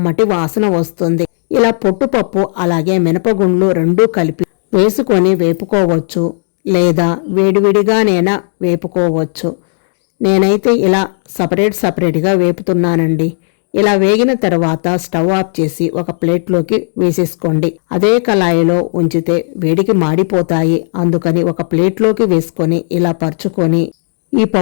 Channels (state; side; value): silent; right; digital silence